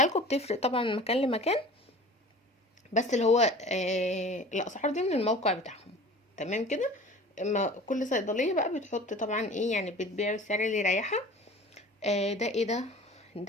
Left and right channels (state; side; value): normal; both; correlation 0.42